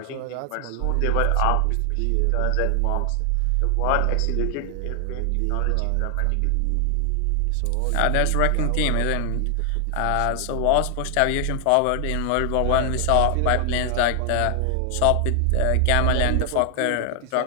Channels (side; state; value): both; different; correlation 0.00